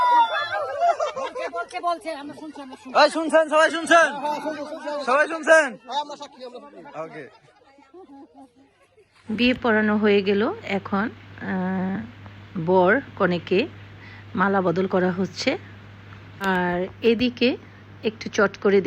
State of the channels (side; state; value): both; identical; correlation 1.00